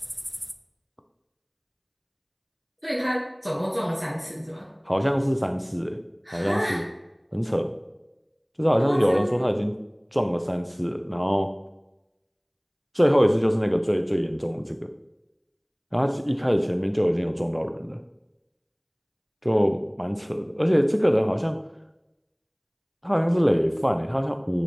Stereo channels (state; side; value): identical; both; correlation 1.00